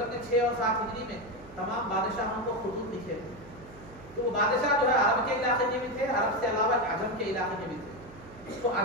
نے 6 اور 7 ہجری میں تمام بادشاہوں کو خطوط لکھے تھے. تو وہ بادشاہ جو ہے عرب کے علاقے کے بھی تھے، عرب سے علاوہ عجم کے علاقے کے بھی تھے. تو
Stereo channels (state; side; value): noise; right; hum, 20 dB below the sound